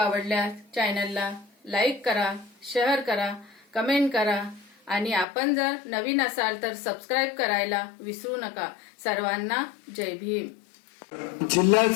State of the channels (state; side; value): drops out; right; at 5.2 s